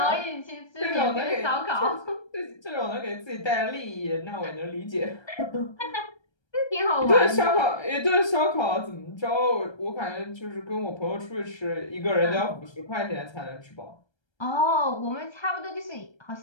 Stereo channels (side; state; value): right; late; 1.3 ms